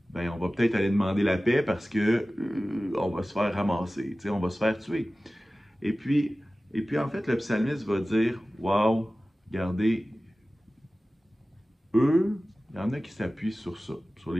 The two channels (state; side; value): normal; both; correlation 0.96